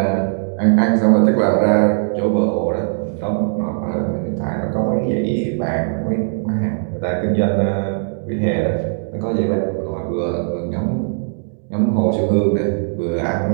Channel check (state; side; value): silent; left; digital silence